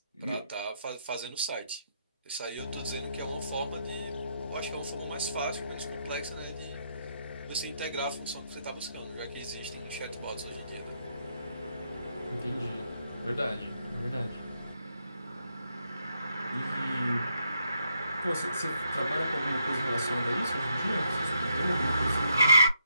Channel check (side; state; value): both; inverted; correlation -0.77